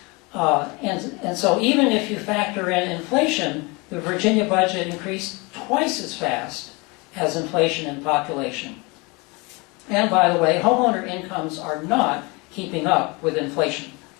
And so even if you factor in inflation, the Virginia budget increased twice as fast as inflation and population. And by the way, homeowner incomes are not keeping up with inflation.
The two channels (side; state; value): right; quieter; 27.1 dB